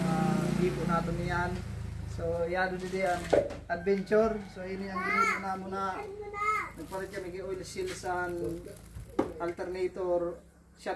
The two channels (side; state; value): both; identical; correlation 1.00